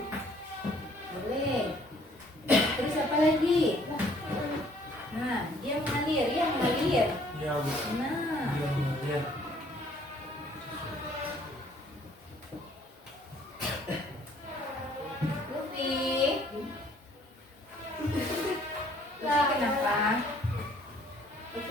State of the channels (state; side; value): normal; both; correlation 0.60